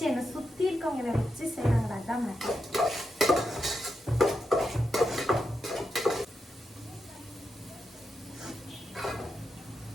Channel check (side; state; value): both; normal; correlation 0.86